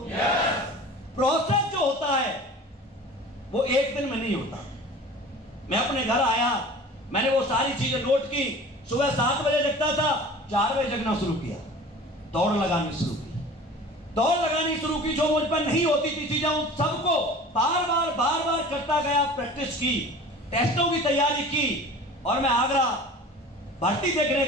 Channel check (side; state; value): both; normal; correlation 0.41